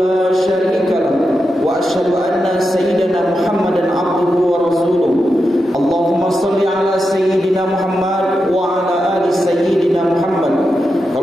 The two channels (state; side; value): normal; both; correlation 0.88